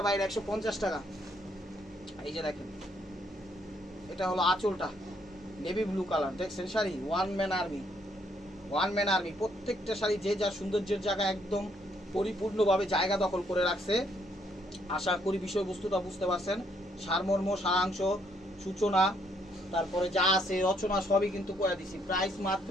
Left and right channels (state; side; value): normal; both; correlation 0.70